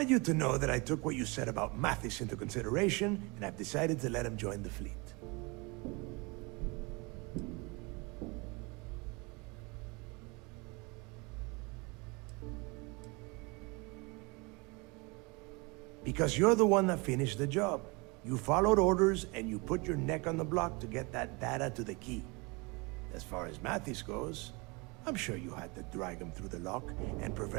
you to know that I took what you said about Mathis into consideration, and I've decided to let him join the fleet. Because you're the one that finished the job. You followed orders and you put your neck on the block to get that data to the key. As far as Mathis goes, I'm sure you had to drag him through the lock and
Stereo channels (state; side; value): quieter; left; 27.7 dB